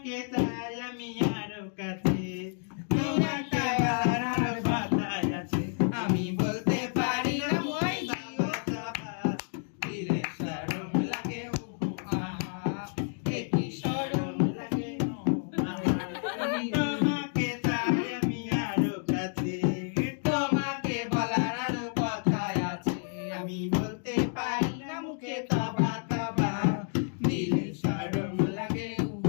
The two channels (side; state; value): right; silent; 56 dB below the other